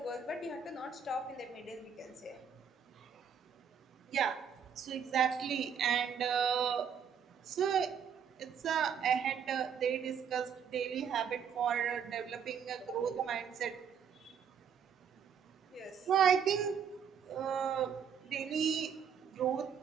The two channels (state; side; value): quieter; left; 7.4 dB